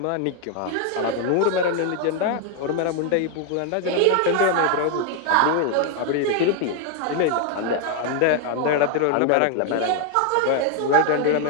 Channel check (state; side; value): different; both; correlation 0.00